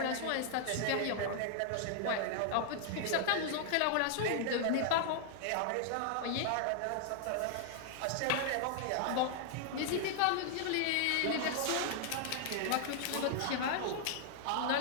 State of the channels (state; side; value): different; both; correlation -0.01